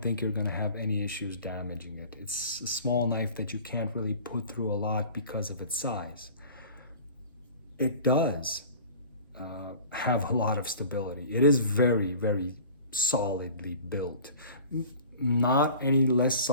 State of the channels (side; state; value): both; inverted; correlation -0.43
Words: think you're going to have any issues damaging it. It's a small knife that you can't really put through a lot because of its size. It does have a lot of stability. It is very, very solidly built. Not any less